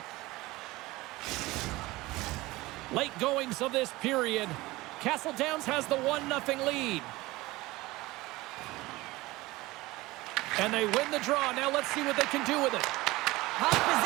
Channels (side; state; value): left; quieter; 20.0 dB